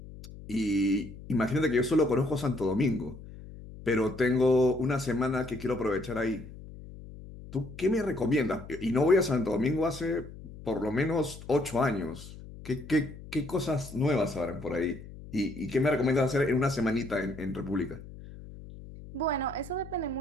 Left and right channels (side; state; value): left; noise; hum, 15 dB below the sound